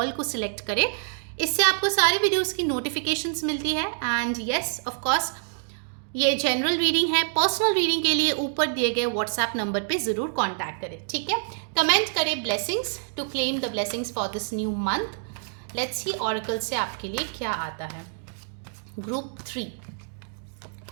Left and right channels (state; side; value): silent; left; digital silence